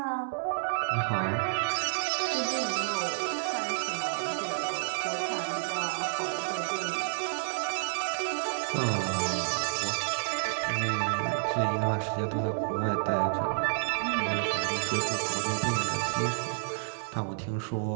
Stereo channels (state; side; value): silent; left; digital silence